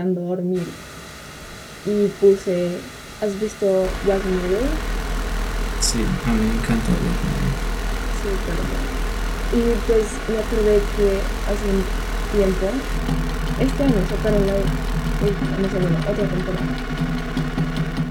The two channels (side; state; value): both; identical; correlation 1.00